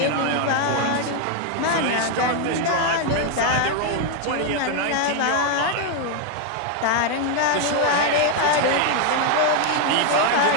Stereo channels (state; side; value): different; both; correlation 0.00